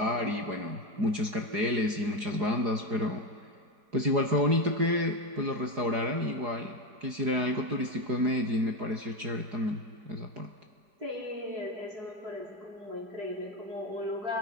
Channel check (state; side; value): late; left; 4.8 ms